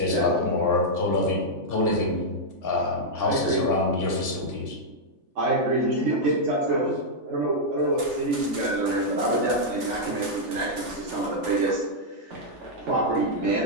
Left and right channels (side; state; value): left; late; 3.4 ms